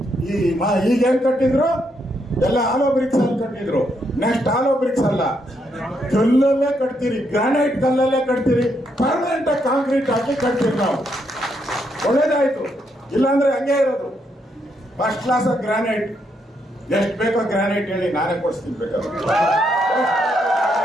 ಈಗೇನ್ ಕಟ್ಟಿದ್ರು ಎಲ್ಲ ಆಲೋ ಬ್ರಿಕ್ಸ್ ಅಲ್ಲಿ ಕಟ್ಟಿದ್ರು. ನೆಕ್ಸ್ಟ್ ಆಲೋ ಬ್ರಿಕ್ಸ್ ಅಲ್ಲ, ಕಲ್ಲಲ್ಲೇ ಕಟ್ತೀರಿ, ಗ್ರಾನೈಟ್ ಕಲ್ಲಲ್ಲೇ ಕಟ್ತೀರಿ, ಪರ್ಮನೆಂಟ್ ಆಗಿ ಕಾಂಕ್ರೀಟ್ ಹಾಕಿ ಕಟ್ತೀರಿ ನಾವು. ಒಳ್ಳೇದಾಯ್ತು. ಇಲ್ಲಾಂದ್ರೆ ಹಂಗೆ ಇರೋದು. First class of granite. ಎಷ್ಟು ಬೇಕೋ ಗ್ರಾನೈಟ್ ಹೇಳಿ, ನಾನೇ ಕೊಡಿಸ್ತೀನಿ ಬೇಕಾದ್ರೆ.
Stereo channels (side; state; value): both; normal; correlation 0.77